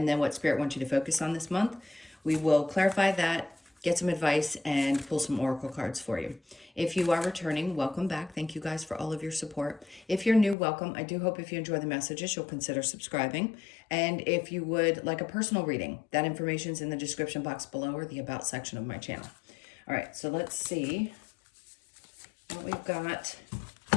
then what Spirit wants you to focus on this month. We will clarify that, get some advice, and pull some oracle cards for you. If you are returning, welcome back. Thank you guys for all of your support. If you're new, welcome. I do hope if you enjoy the messages, you'll consider subscribing. And if you would like a personal reading, that information's in the description box below or the About section of my channel. All right, so let's see what we've got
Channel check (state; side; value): drops out; right; at 10.6 s